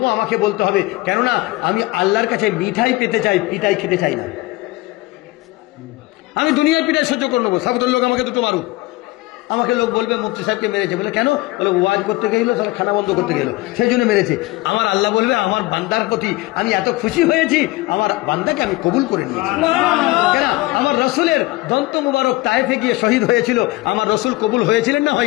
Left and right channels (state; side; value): quieter; right; 20.3 dB